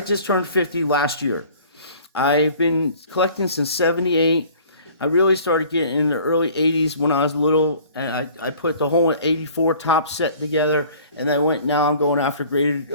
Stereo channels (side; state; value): both; inverted; correlation -0.50